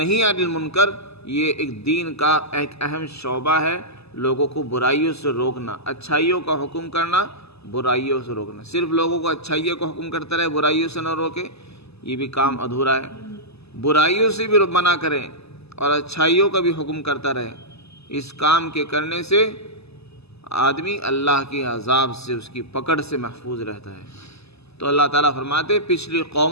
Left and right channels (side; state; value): right; late; 0.79 ms